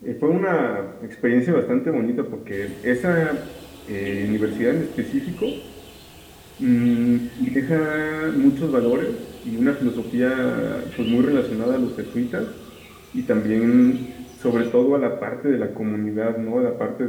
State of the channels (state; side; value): identical; both; correlation 1.00